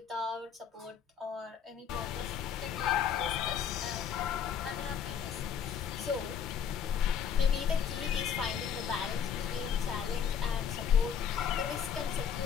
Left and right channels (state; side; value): quieter; right; 7.7 dB